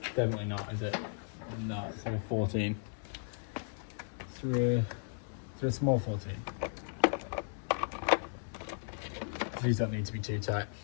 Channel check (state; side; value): silent; right; digital silence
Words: Definitely not, is it? No, it's like a 14. It's a small 14. These don't need to be too tight.